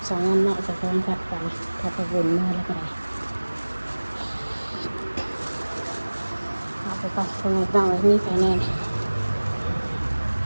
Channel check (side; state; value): both; inverted; correlation -1.00